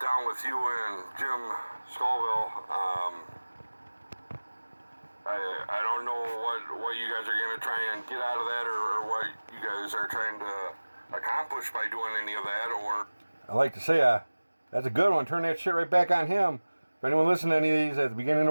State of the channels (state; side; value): inverted; both; correlation -1.00